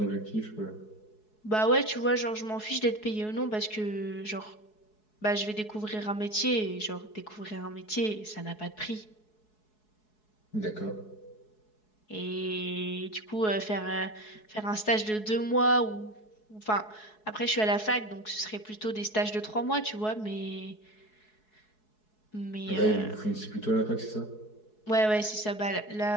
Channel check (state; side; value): late; right; 4.7 ms